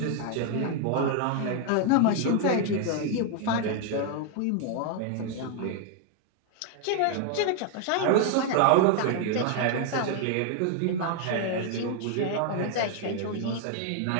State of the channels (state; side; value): different; both; correlation 0.00